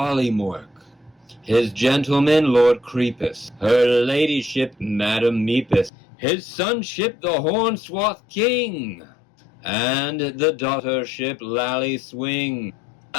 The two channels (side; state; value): right; drops out; at 5.9 s